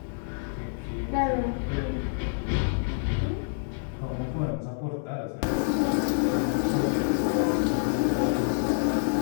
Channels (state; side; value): silent; right; 60 dB below the other